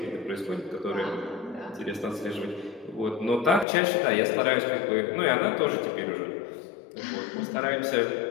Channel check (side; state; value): right; drops out; at 3.7 s